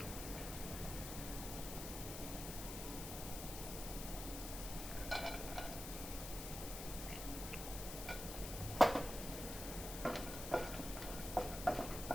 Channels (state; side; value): noise; left; hiss, 7 dB below the sound